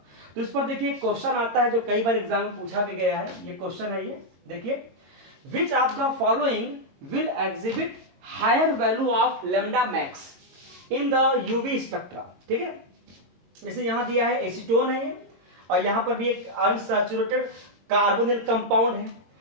तो इस पर देखिए क्वेश्चन आता है जो कई बार एग्जाम में पूछा भी गया है। ये क्वेश्चन है, ये देखिए which of the following will exhibit higher value of lambda max in the UV spectra, ठीक है। जैसे यहां दिया है एसीटोन है और यहां पर भी एक अनसैचुरेटेड कार्बोनिल कंपाउंड है।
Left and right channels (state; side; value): late; left; 22 ms